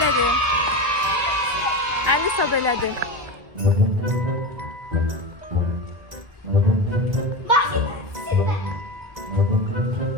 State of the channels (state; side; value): late; left; 2.0 ms